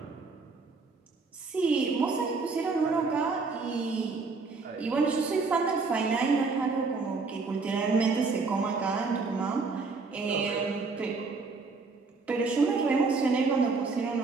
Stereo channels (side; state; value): left; quieter; 4.2 dB